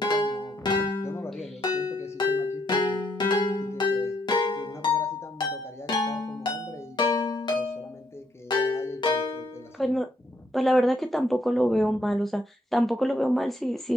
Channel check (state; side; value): normal; both; correlation 0.74